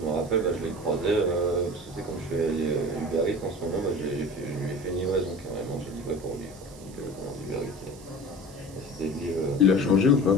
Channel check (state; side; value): noise; right; hiss, 21 dB below the sound